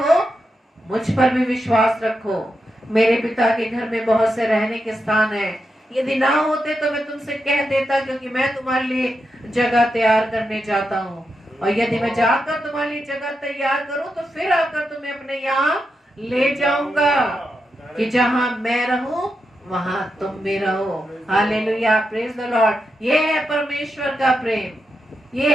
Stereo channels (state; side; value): normal; both; correlation 0.86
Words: मुझ पर भी विश्वास रखो। मेरे पिता के घर में बहुत से रहने के स्थान है, यदि ना होते तो मैं तुमसे कह देता, क्योंकि मैं तुम्हारे लिए जगह तैयार करने जाता हूँ। और यदि मैं जाकर तुम्हारे लिए जगह तैयार करूँ तो फिर आकर तुम्हें अपने यहाँ ले जाऊंगा, कि जहाँ मैं रहूं वहां तुम भी रहो। Hallelujah, praise the Lord. ये है परमेश्वर का प्रेम,